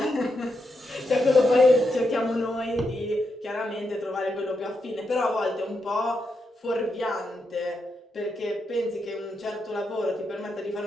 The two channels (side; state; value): both; normal; correlation 0.84